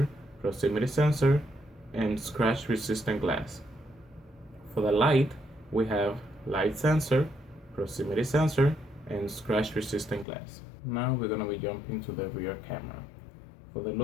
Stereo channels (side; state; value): right; drops out; at 10.2 s